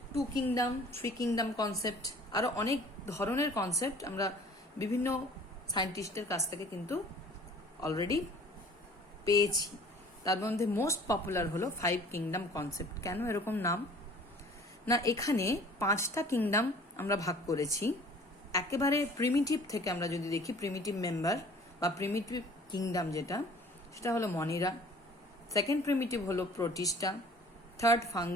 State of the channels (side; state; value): both; normal; correlation 0.50